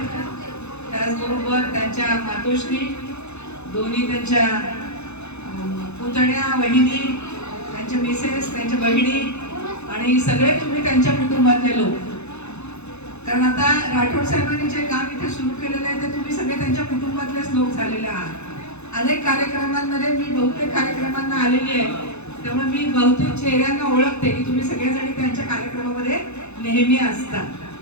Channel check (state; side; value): late; right; 0.81 ms